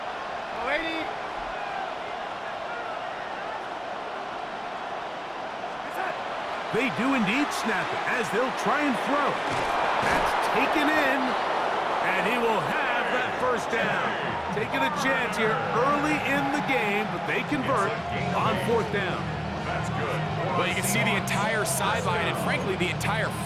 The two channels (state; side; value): identical; both; correlation 1.00